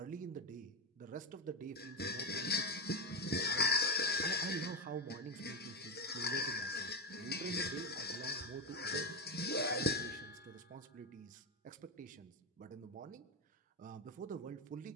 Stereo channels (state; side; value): normal; both; correlation 0.12